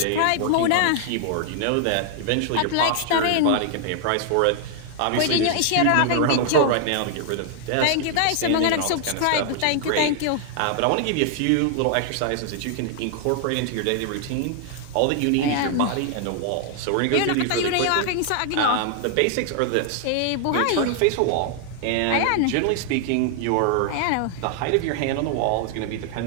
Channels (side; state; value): both; different; correlation 0.00